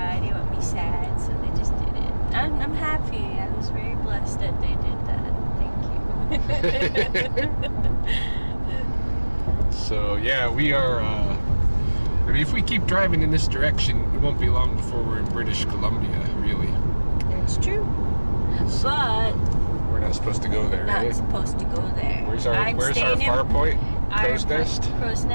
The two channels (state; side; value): inverted; both; correlation -1.00